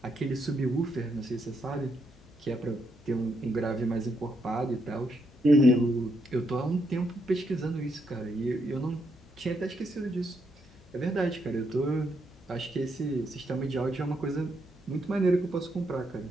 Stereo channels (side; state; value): left; noise; hum, 29 dB below the sound